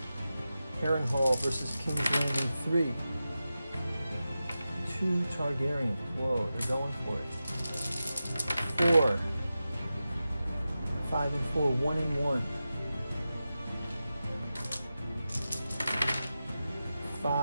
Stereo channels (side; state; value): both; inverted; correlation -0.93